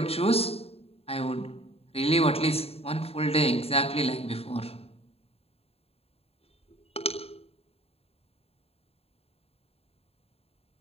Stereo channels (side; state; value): right; late; 0.29 ms